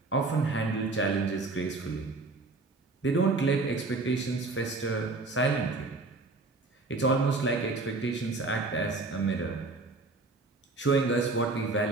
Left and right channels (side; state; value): left; quieter; 3.4 dB